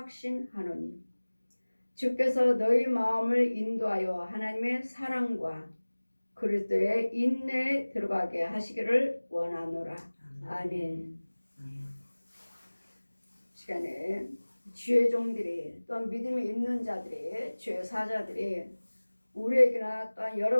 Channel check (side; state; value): both; inverted; correlation -1.00